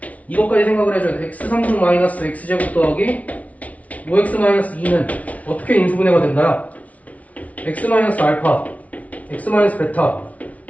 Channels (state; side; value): late; right; 0.068 ms